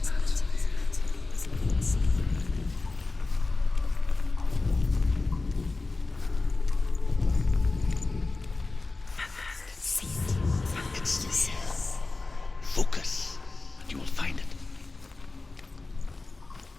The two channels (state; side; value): quieter; right; 3.5 dB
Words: It's there. Focus, and you will find it.